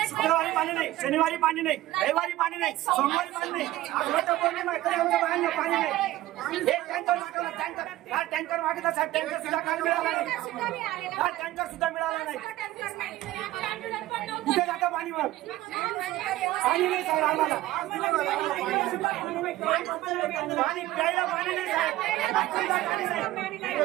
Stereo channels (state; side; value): quieter; left; 16.2 dB